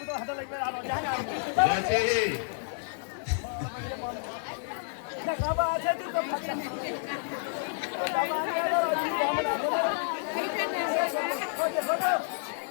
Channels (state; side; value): silent; right; digital silence